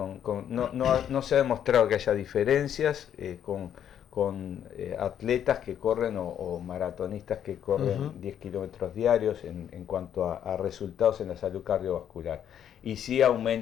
se ha demostrado que haya diferencias con atletas que corren o maratonistas que corren 10 kilómetros diarios en cuanto a resultados en la salud cardiovascular. Y sí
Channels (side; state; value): right; quieter; 9.6 dB